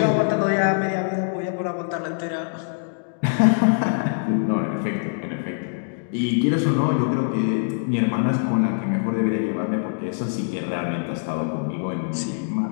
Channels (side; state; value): right; silent; digital silence